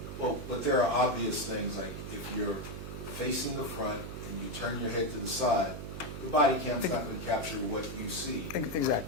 but there are obvious things, like if you're facing the front and you turn your head to the side, the body cam's not going to capture what you see.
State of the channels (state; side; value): noise; right; hum, 8 dB below the sound